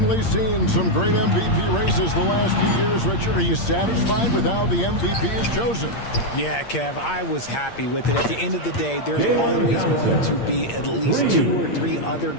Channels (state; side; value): late; right; 8.6 ms